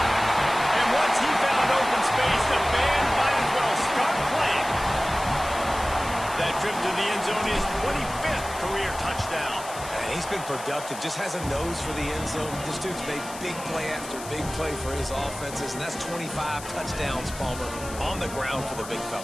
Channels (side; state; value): left; noise; hiss, 13 dB below the sound